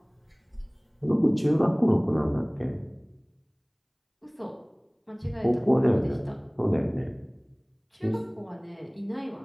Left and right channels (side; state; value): both; identical; correlation 1.00